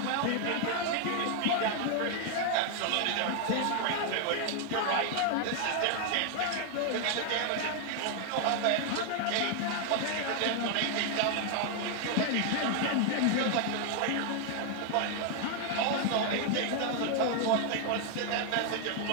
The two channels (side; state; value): both; different; correlation 0.00